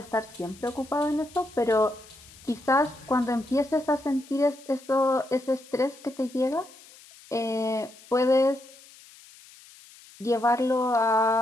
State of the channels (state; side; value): noise; left; hiss, 22 dB below the sound